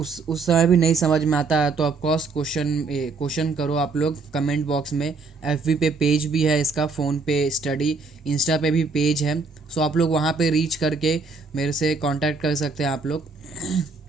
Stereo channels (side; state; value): left; quieter; 4.2 dB